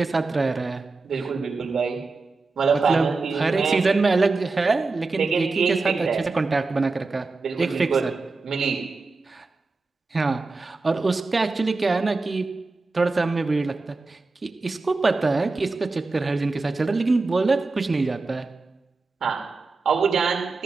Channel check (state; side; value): quieter; left; 3.8 dB